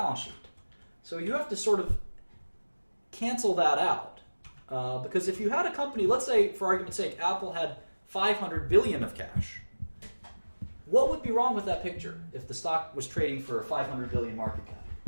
sheet. So you have to sort of cancel that out. Because if you had a company, let's say for argument's sake, Apple had 500 billion of cash. What would be wrong with that picture if the stock was trading for a 500 billion market cap?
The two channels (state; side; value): inverted; both; correlation -1.00